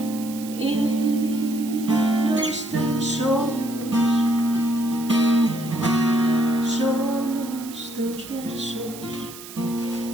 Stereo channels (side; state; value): right; noise; hiss, 15 dB below the sound